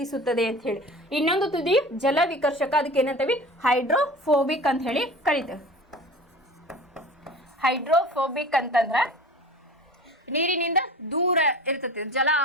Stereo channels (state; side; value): normal; both; correlation 0.38